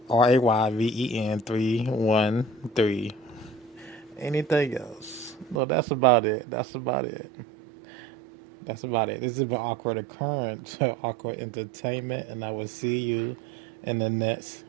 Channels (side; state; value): left; drops out; at 5.6 s